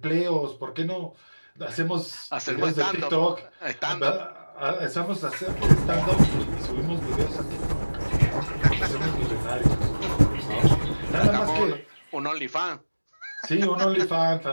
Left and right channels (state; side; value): inverted; both; correlation -1.00